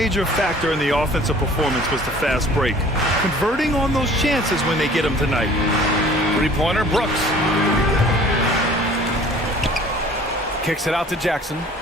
factor in the offensive performance was the fast break. Converting on those chances when they get them tonight. Three-pointer, Brooks. Kicks it out to Jackson.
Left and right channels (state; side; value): normal; both; correlation 0.50